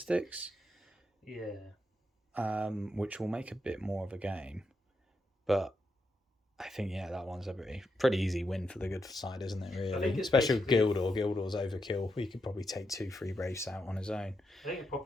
Yeah. Which will make a bit more of a game. But I think, yeah, that one's a pretty easy win for the good side, isn't it, really? Especially with Gildor. Gildor's overkill. He could probably take 2-3 Wraiths out on his own. I think the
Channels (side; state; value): both; normal; correlation 0.83